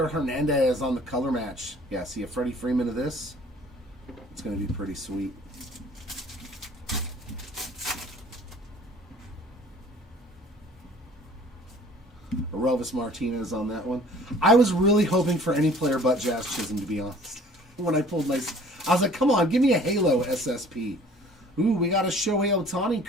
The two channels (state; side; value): normal; both; correlation 0.52